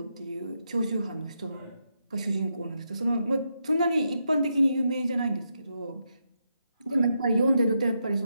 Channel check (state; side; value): inverted; both; correlation -0.82